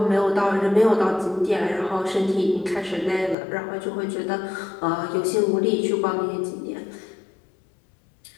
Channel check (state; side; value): drops out; right; at 3.4 s